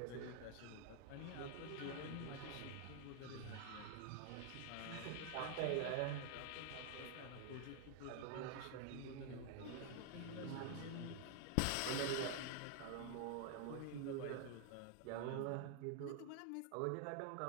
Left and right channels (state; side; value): different; both; correlation 0.00